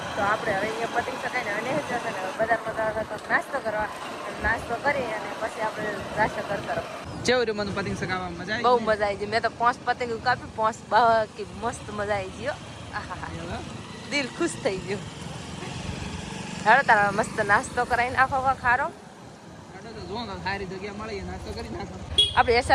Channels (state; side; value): identical; both; correlation 1.00